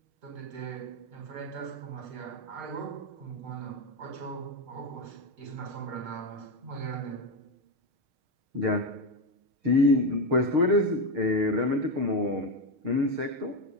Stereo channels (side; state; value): left; late; 6.5 ms